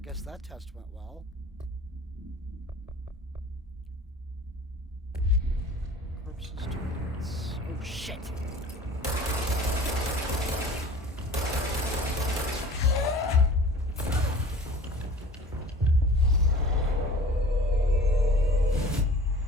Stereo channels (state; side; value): normal; both; correlation 0.45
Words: that test went well. Corpses targets. Oh shit!